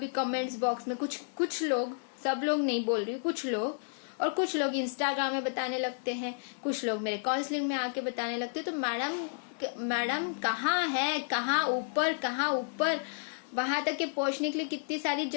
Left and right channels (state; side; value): silent; right; digital silence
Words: कमेंट्स बॉक्स में कुछ लोग, सब लोग नहीं बोल रही, कुछ लोग, और कुछ लोग इंस्टाग्राम में बताने लगते हैं, कुछ लोग मेरे काउंसलिंग में आके बताने लगते हैं, तो मैडम कहाँ है, कहाँ ऊपर वहां तक के पहुंचने के लिए कितनी सारी